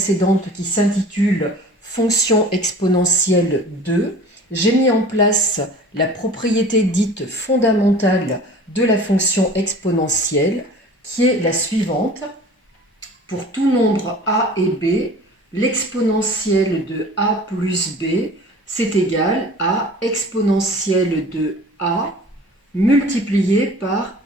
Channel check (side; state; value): both; normal; correlation 0.43